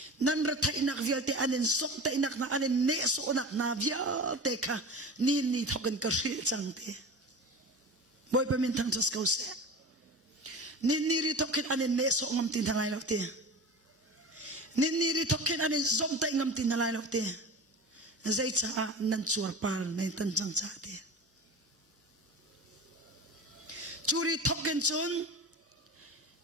nan ra thai nak vial te anen sok te nak na anen ne so nak na vial te kha ni thoken ka ri chang te boy pa min thang chas kau se ni ri thoken anen ne so ngam tin thangai lo te ni ri thoken anen zom te ngam tin nalai lo te zai cha nan chuar par nei tan chang cha te churi thoken chun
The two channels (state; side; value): normal; both; correlation 0.33